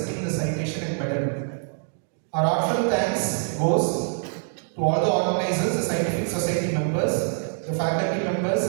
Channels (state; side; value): silent; left; digital silence